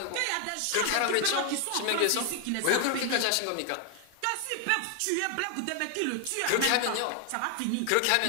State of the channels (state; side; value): different; both; correlation 0.00